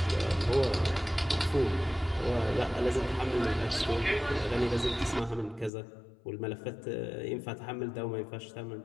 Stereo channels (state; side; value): drops out; right; at 5.7 s